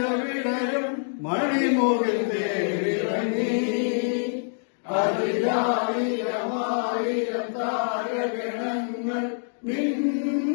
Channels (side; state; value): right; silent; digital silence